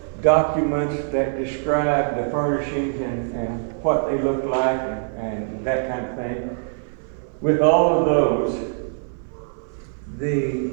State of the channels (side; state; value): left; silent; 57 dB below the other